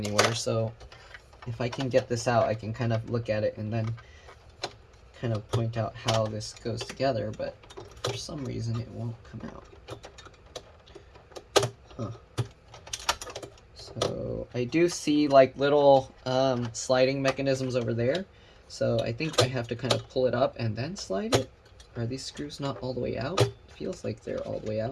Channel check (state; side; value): identical; both; correlation 1.00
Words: So if I can get this out, I can kind of look at it and then kind of point out how this goes together. But for some reason, it won't come out. Huh. So I do see like little sliding mechanisms over there. So I think I have to kind of pull it up and then slide it. Are these screws not all the way out? It feels like they're all the way